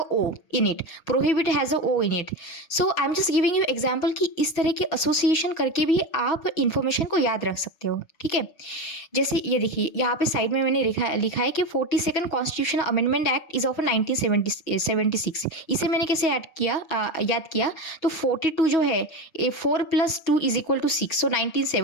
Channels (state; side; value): late; right; 6.1 ms